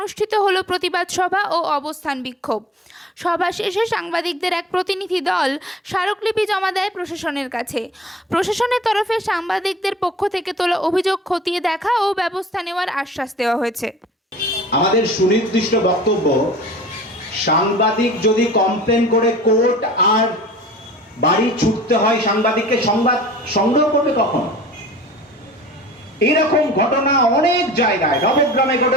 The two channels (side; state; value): both; normal; correlation 0.44